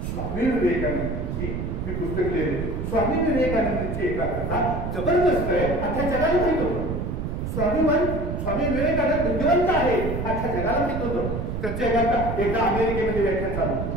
स्वामी विवेकानंदांची मी पुस्तक लिहिले. स्वामी विवेकानंदांची एकाग्रता जबरदस्त आहे, अख्ख्या जगाला माहित होतं. स्वामी विवेकानंद बुद्धिवंत आहे, अख्ख्या जगाला माहित होतं. त्यांच्या एकदा अमेरिकेमध्ये व्याख्यान चालू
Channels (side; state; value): right; noise; rumble, 3 dB below the sound